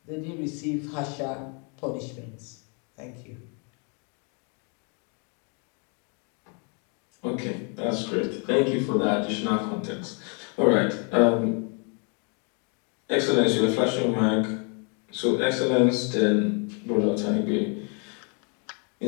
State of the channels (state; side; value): quieter; right; 36.9 dB